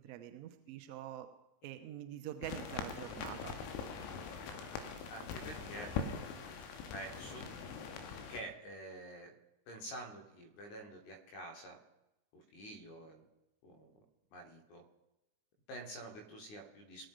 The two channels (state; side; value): late; right; 19 ms